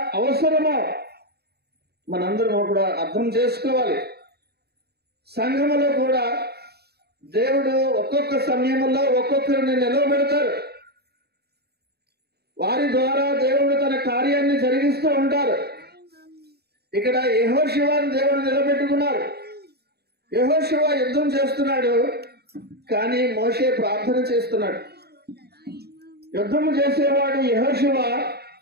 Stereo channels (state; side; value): late; left; 0.47 ms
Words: అవసరమో మనందరం కూడా అర్థం చేసుకోవాలి. సంఘములో కూడా దేవుడు ఒక్కొక్క సమయంలో ఒక్కొక్కరిని నిలవబెడతారు. వారి ద్వారా దేవుడు తన కార్యాన్ని జరిగిస్తూ ఉంటారు. ఇక్కడ యెహోషువను దేవుడు నిలబెట్టుకున్నారు. యెహోషువ యుద్ధం చేస్తున్నాడు, కానీ మోషే ప్రార్థన చేస్తున్నాడు. యుద్ధము చేసేవాడు యెహోషువ,